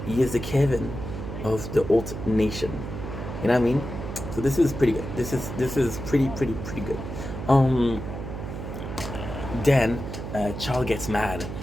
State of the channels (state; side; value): noise; right; hum, 7 dB below the sound